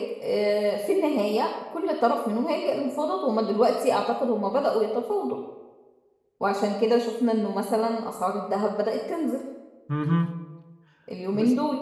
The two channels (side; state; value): both; identical; correlation 1.00